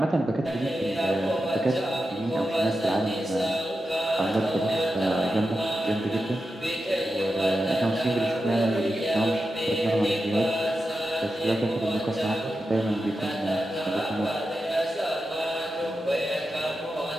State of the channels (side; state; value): both; normal; correlation 0.90